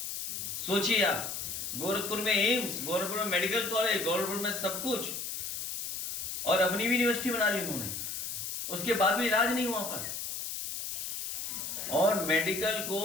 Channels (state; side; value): noise; left; hiss, 5 dB below the sound